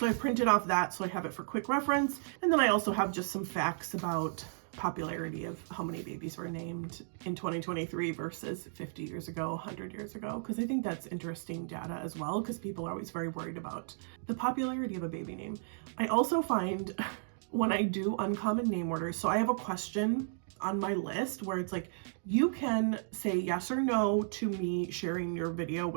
I printed off that so I have it for quick reference. And then I also have just some facts about popularity of how many babies were named in 2023 versus 50 years ago, 100 years ago, because I think that's interesting data as well, because people are always very worried about the popularity of a baby name. I also find when I do uncommon name orders, so I have a question on my list where it's like, you can say yes or no to me sharing your video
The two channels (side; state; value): left; silent; digital silence